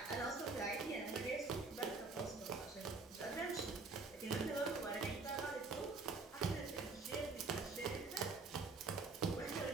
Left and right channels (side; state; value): left; quieter; 3.9 dB